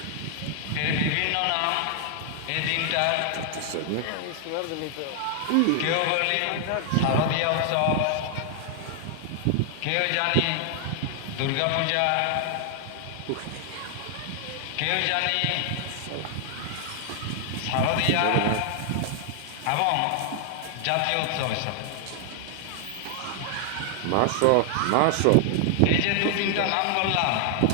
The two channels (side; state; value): both; different; correlation 0.00